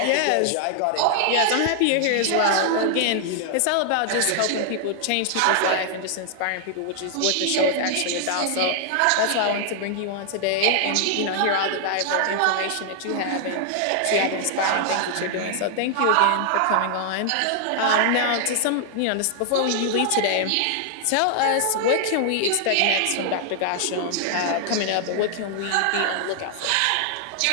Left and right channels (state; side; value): different; both; correlation 0.00